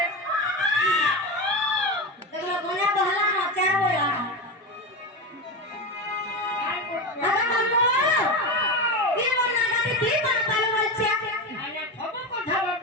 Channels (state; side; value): normal; both; correlation 0.19